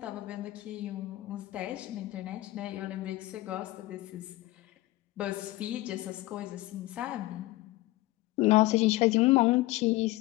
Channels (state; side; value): quieter; right; 18.3 dB